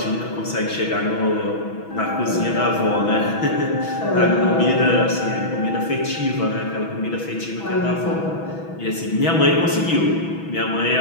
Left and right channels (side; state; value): right; late; 6.1 ms